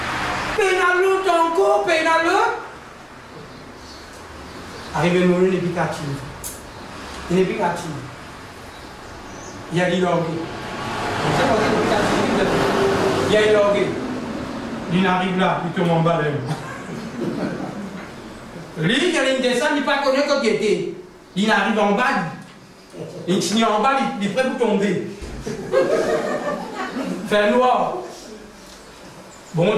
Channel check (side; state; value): both; identical; correlation 1.00